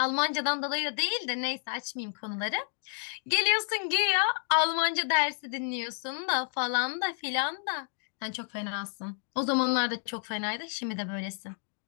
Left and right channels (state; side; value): silent; right; 58 dB below the other